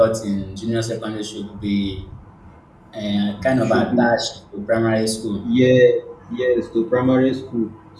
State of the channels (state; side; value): identical; both; correlation 1.00